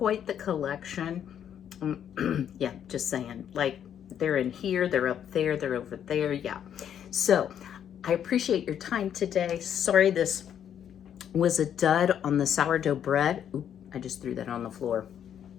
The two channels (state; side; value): quieter; right; 9.3 dB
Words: the collection. Yeah, just saying, like, they're in here, they're up there, they're over there, yeah. So I appreciate your time today. Sorry this was a dud on the sourdough bread. Oop, I just threw that on the floor.